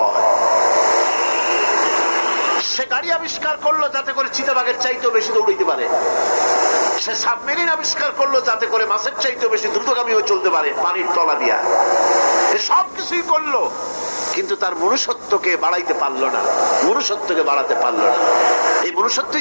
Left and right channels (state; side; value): inverted; both; correlation -1.00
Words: হয়। সে গাড়ি আবিষ্কার করলো যাতে করে চিতাবাঘের চাইতেও বেশি দৌড়াইতে পারে। সে সাবমেরিন আবিষ্কার করলো যাতে করে মাছের চাইতেও বেশি দ্রুতগামী হয়ে চলতে পারে পানির তলা দিয়া। সব কিছুই করলো, কিন্তু তার মনুষ্যত্বকে বাড়াইতে পারলো না, মনুষ্যত্বকে বাড়াতে পারলো না। এই